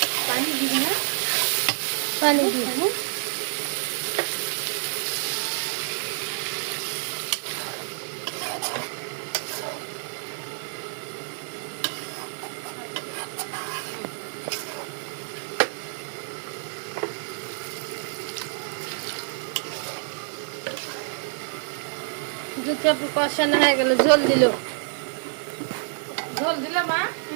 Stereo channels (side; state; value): left; silent; digital silence